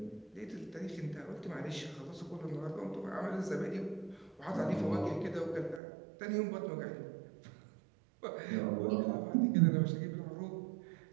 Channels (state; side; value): drops out; left; at 5.8 s